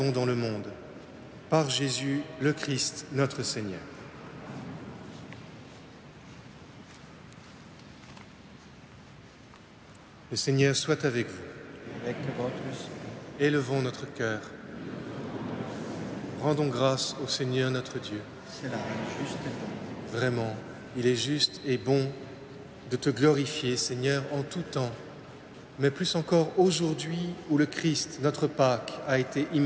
dans le monde. Par Jésus, le Christ, notre Seigneur. Le Seigneur soit avec vous. Avec votre esprit. Élevons notre cœur. Rendons grâce au Seigneur notre Dieu. Cela est juste et bon. Vraiment, il est juste et bon de te glorifier, Seigneur, en tout temps, mais plus encore aujourd'hui où le Christ, notre Pâque, a été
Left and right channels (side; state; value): both; identical; correlation 1.00